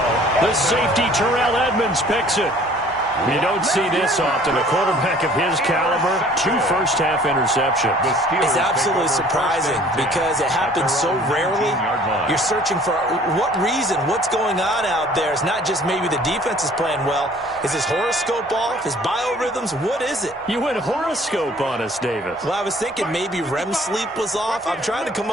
The safety, Terrell Edmonds, picks it. You don't see this often. A quarterback of his caliber, 2 first-half interceptions. It's absolutely surprising because it happens so rarely. You're searching for what reason, what's going on out there. It's not just maybe the defense is playing well. Is his horoscope off? His biorhythms? What is it? You went horoscope on us, Davis. Well, I was thinking maybe REM sleep was off. I'm trying to come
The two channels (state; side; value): normal; both; correlation 0.53